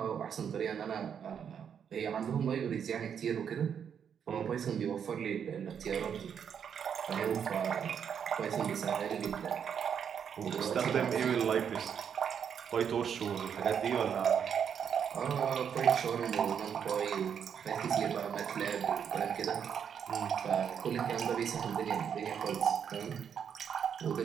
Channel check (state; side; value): quieter; left; 7.8 dB